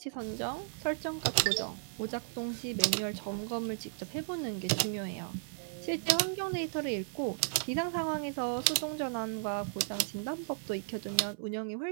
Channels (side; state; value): left; silent; 55 dB below the other